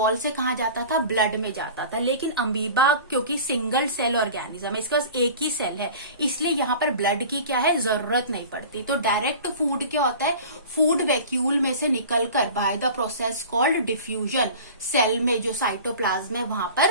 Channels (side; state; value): both; inverted; correlation -0.39